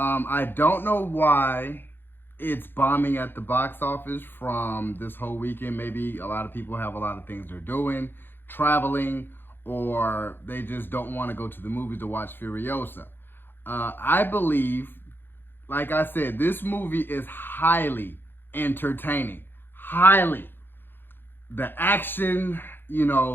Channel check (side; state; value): right; late; 0.10 ms